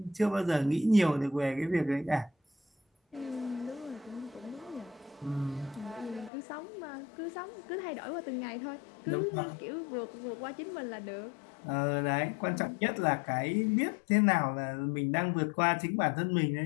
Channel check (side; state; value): right; drops out; at 6.3 s